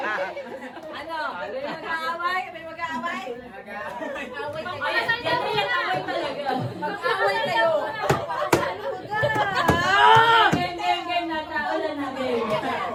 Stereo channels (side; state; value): both; identical; correlation 1.00